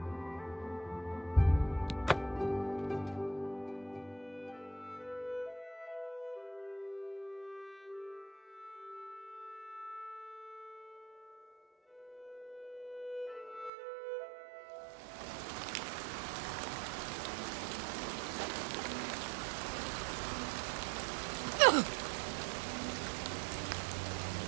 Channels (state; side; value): drops out; left; at 13.7 s